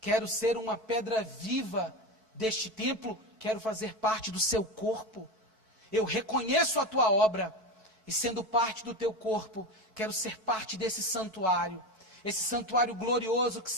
Quero ser uma pedra viva deste templo, quero fazer parte do seu corpo. Eu reconheço a tua obra, e sendo parte do teu corpo, quero ser parte desse santuário, esse santuário glorioso que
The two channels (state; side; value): late; left; 4.6 ms